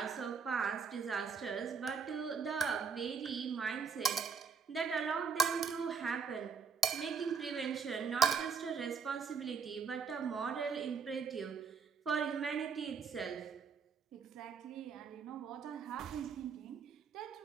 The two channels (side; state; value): left; quieter; 5.9 dB